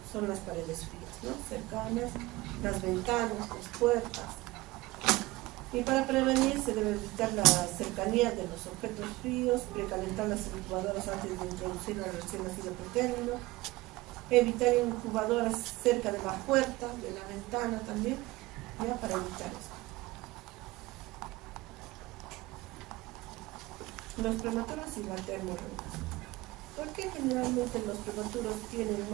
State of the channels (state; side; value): quieter; left; 19.8 dB